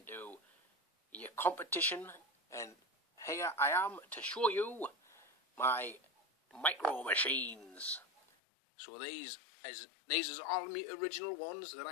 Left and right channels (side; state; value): right; drops out; at 8.2 s